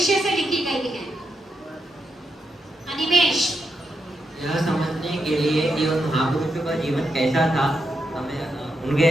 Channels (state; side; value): normal; both; correlation 0.84